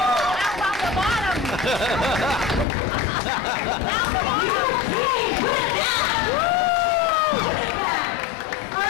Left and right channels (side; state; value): right; drops out; at 2.7 s